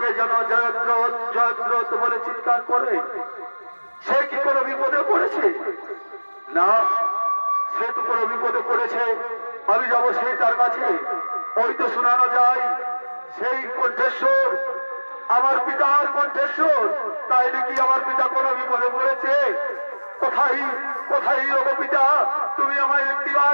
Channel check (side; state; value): both; inverted; correlation -1.00